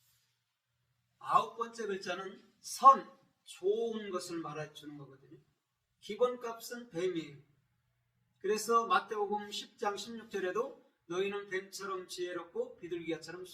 9번째 글자는 선, 좋은 것을 말해주는 거거든요. 기본값은 뱀이에요. 그래서 마태복음 10장 16절에도 너희는 뱀처럼 지혜롭고 비둘기처럼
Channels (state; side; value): identical; both; correlation 1.00